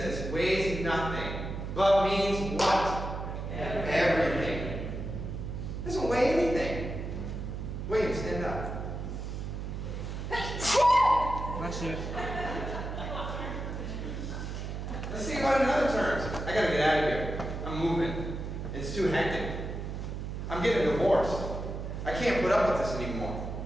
weighs nothing, but means what? Everything. Doesn't weigh anything. William, stand up. Bless you. Let's think about it in other terms. I gotta get out of here. I'm moving. It's too hectic. I'm getting divorced. I can't put up with this anymore.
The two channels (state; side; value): noise; right; hum, 5 dB below the sound